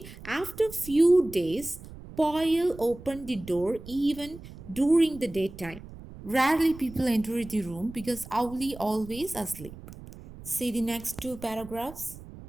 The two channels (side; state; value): right; noise; rumble, 16 dB below the sound